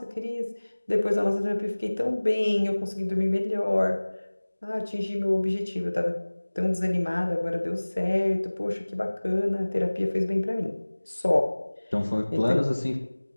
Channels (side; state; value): both; inverted; correlation -1.00